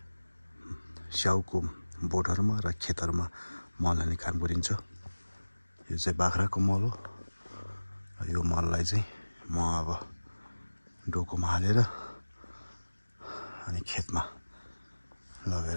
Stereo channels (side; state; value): both; inverted; correlation -1.00